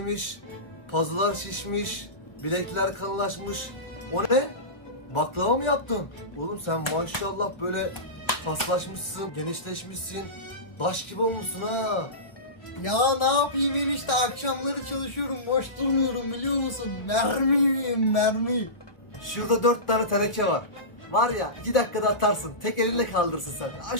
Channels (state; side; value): late; right; 1.0 ms